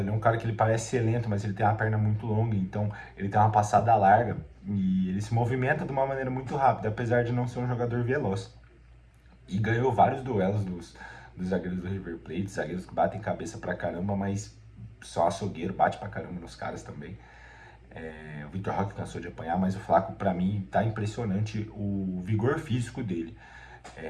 ele é um cara que ele parece ser lento, mas ele tem uma perna muito longa, então ele tem uma passada larga e ele se movimenta de uma maneira muito rápida, apesar de não ser um jogador veloz. E ganhou vários duelos dos zagueiros do River Plate, zagueiros que batem cabeça pra caramba, mas só açougueiro, bate pra caramba nos caras também. O Vitor Roque cansou de apanhar, mas o Flaco, pra mim, tá impressionante o vigor físico dele.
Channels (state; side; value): identical; both; correlation 1.00